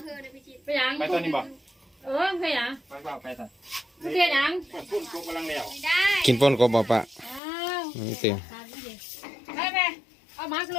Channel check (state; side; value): drops out; right; at 7.4 s